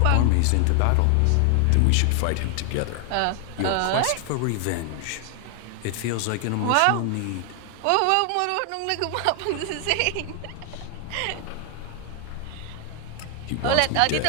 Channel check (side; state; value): both; different; correlation 0.00